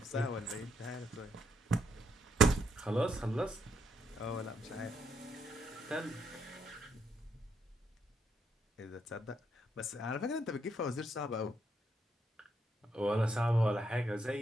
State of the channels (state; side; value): normal; both; correlation 0.77